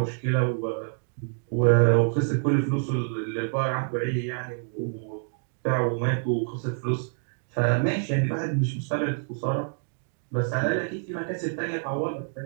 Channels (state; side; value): silent; left; digital silence